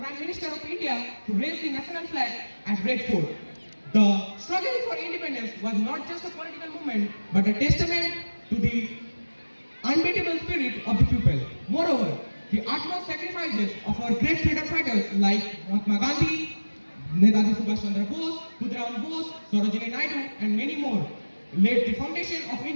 Minister of India to raise the national flag at Red Fort. The struggle for independence was not just a political movement, but a testament to the unbeatable spirit of the people. Moreover, the utmost sacrifices of our great freedom fighters like Mahatma Gandhi, Netaji Subhash Chandra Bose, Khudiram Bose, Sarojini Naidu, and many more laid the foundation of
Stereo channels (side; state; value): both; inverted; correlation -1.00